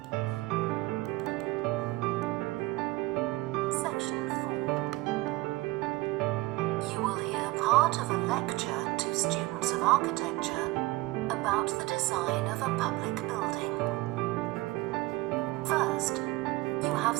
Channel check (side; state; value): left; quieter; 20.3 dB